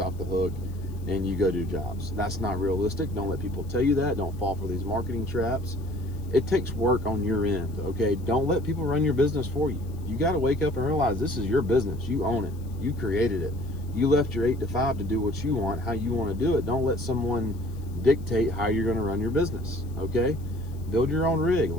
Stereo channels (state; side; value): noise; left; hiss, 28 dB below the sound